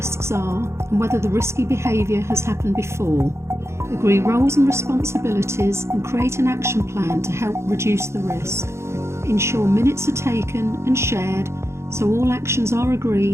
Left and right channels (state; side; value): late; left; 0.13 ms